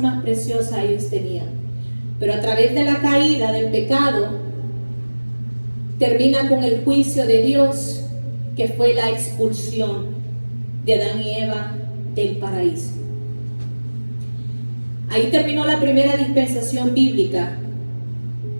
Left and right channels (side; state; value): both; inverted; correlation -1.00